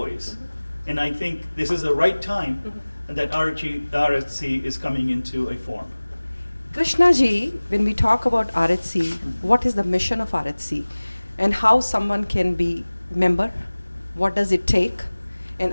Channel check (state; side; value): inverted; both; correlation -1.00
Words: And I think this is the right time that RHC is coming into a form. Krishna ji, when we talk about RHC, what is the mission of RHC and how someone can be member? What does it take? And